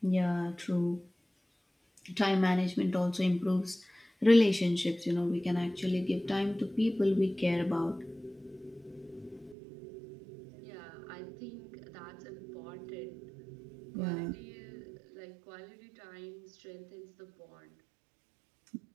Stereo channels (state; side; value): drops out; left; at 9.6 s